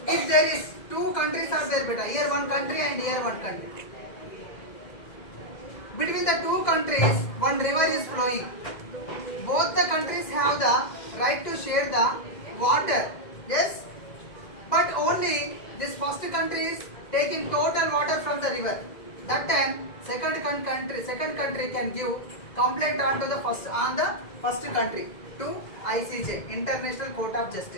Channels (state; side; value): late; right; 2.0 ms